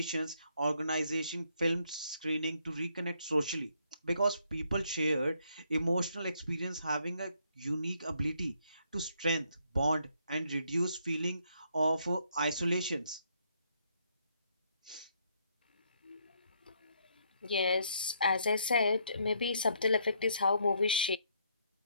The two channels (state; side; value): inverted; both; correlation -0.72